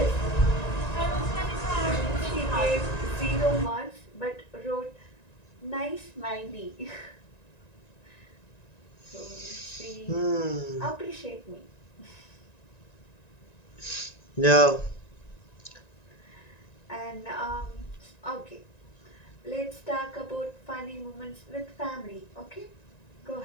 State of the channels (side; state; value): right; late; 1.9 ms